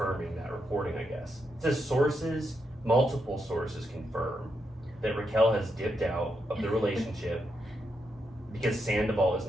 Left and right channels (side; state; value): both; normal; correlation 0.83